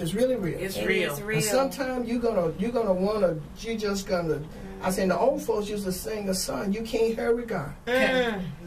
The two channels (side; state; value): both; identical; correlation 1.00